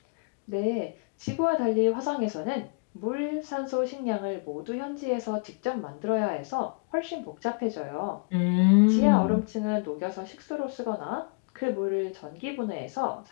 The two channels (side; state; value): right; quieter; 36.4 dB